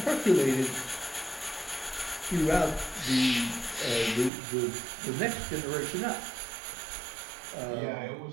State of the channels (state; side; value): drops out; left; at 4.3 s